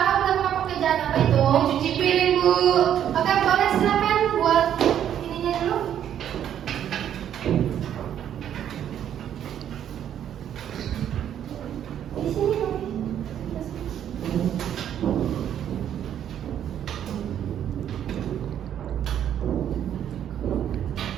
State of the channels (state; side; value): quieter; left; 10.0 dB